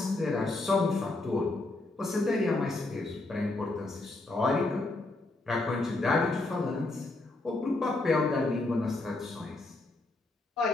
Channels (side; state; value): right; quieter; 3.0 dB